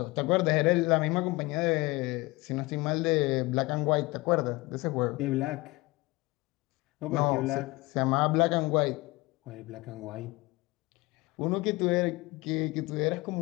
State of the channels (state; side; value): quieter; right; 22.5 dB